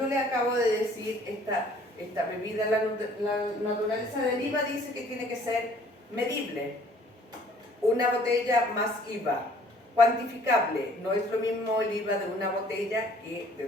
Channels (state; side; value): normal; both; correlation 0.56